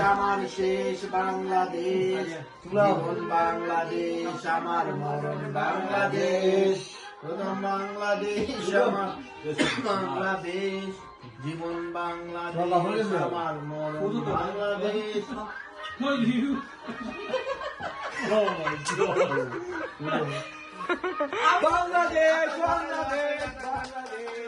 আমার শেষ বাংলাদেশ, জীবন বাংলাদেশ আমার মরণ বাংলাদেশ, প্রথম বাংলাদেশ আমার বাংলাদেশ, জীবন বাংলাদেশ আমার মরণ বাংলাদেশ। বাংলাদেশ বাংলাদেশ বাংলাদেশ।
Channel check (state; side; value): identical; both; correlation 1.00